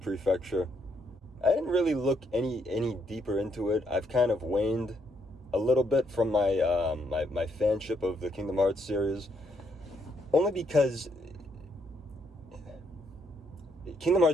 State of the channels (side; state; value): both; normal; correlation 0.74